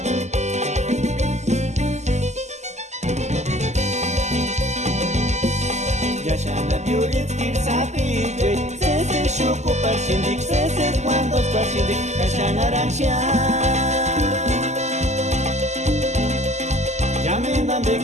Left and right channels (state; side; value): late; left; 0.33 ms